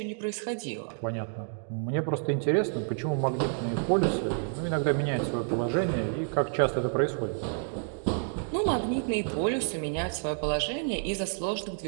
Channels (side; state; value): left; silent; 58 dB below the other